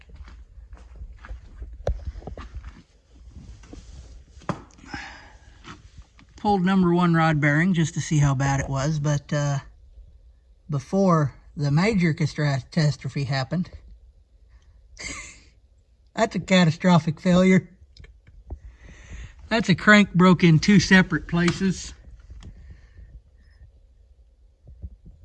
Pulled number 1 rod bearing just to see how bad it was, but before the major catastrophe happened, that's a catastrophic failure. That's a crank broke in 2 separate places.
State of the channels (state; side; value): identical; both; correlation 1.00